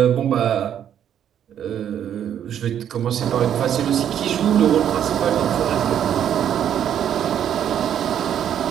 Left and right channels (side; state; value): left; quieter; 9.7 dB